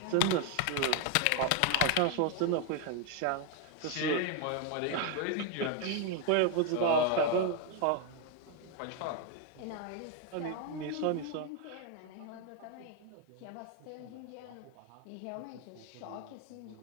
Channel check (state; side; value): different; both; correlation 0.01